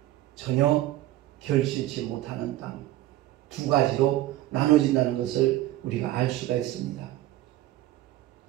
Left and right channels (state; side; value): quieter; left; 15.4 dB